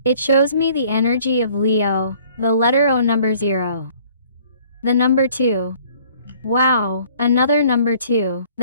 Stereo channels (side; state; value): both; inverted; correlation -0.57